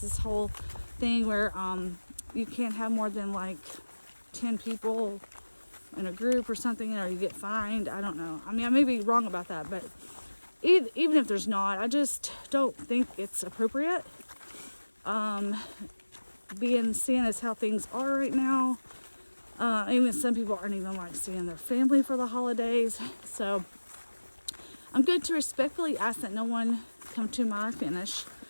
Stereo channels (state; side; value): inverted; both; correlation -1.00